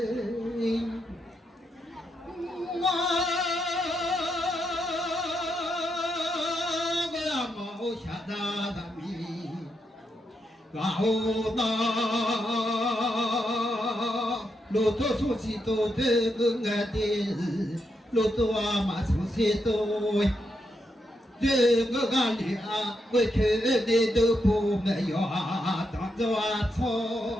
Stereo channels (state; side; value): normal; both; correlation 0.82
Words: gạo ta 路途熟悉都这个爱的，路途啊嘛熟悉都。这个干里啊，过去的都不没有啊，当着啊